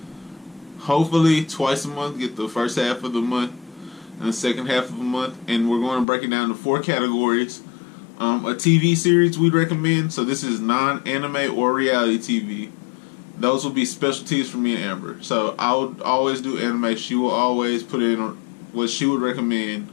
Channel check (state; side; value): drops out; right; at 6.1 s